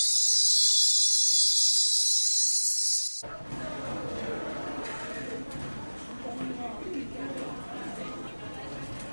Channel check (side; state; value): both; inverted; correlation -1.00